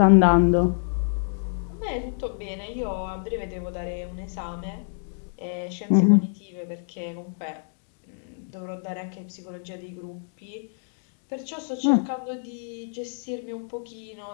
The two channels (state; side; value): silent; right; 60 dB below the other